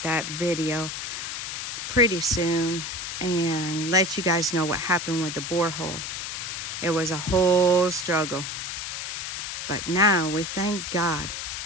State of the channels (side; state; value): left; noise; hiss, 5 dB below the sound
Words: that video pretty soon and let you guys know what happened with the borehole. It was a whole struggle. But now we thank God